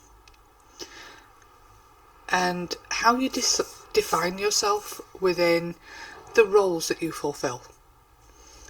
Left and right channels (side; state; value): both; identical; correlation 1.00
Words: And how you define yourself within the roles that you fulfill.